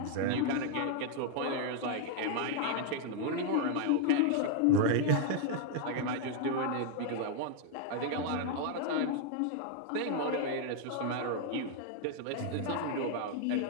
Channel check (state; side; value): different; both; correlation 0.00